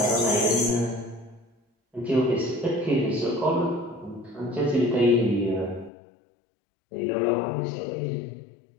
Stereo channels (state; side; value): drops out; right; at 5.9 s